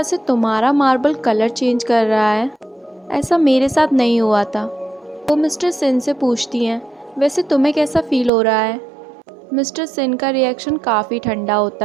से तुम्हारा मार्बल कलर चेंज कर रहा है ऐसा मेरे साथ नहीं हुआ था। वो मिस्टर सिन से पूछती हैं, वैसे तुम्हें कैसा फील हो रहा है? मिस्टर सिन का रिएक्शन काफ़ी ठंडा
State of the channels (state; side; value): drops out; left; at 8.3 s